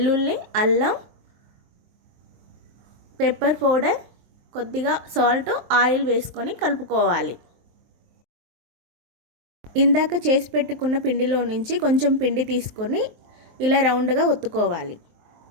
అల్లం, పెప్పర్ పౌడర్, కొద్దిగా సాల్ట్, ఆయిల్ వేసుకొని కలుపుకోవాలి. ఇందాక చేసి పెట్టుకున్న పిండిలో నుంచి కొంచెం పిండి తీసుకొని ఇలా రౌండ్గా ఒత్తుకోవాలి.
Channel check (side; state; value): left; late; 23 ms